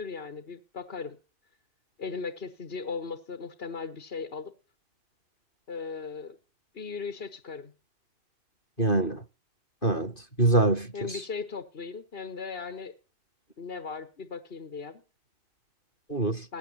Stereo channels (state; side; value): late; right; 2.5 ms